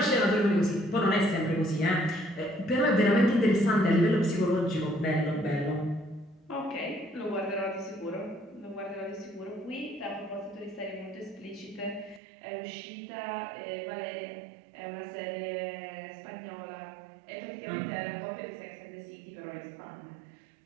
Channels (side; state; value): left; drops out; at 12.2 s